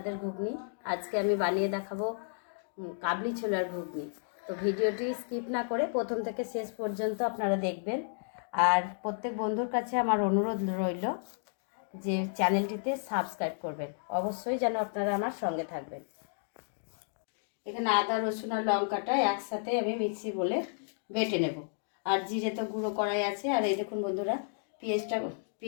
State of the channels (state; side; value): silent; right; digital silence